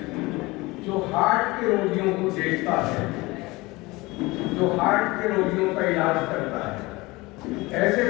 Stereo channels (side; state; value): right; quieter; 22.2 dB